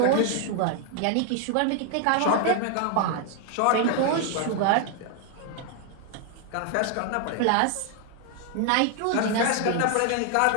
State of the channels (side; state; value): both; different; correlation 0.00